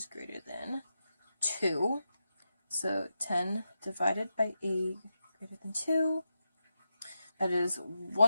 greater than 2. So 10 divided by 8 greater than 2. That is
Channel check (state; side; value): inverted; both; correlation -0.88